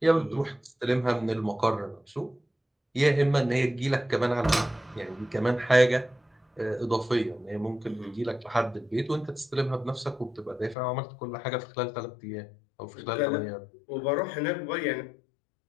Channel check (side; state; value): right; drops out; at 10.8 s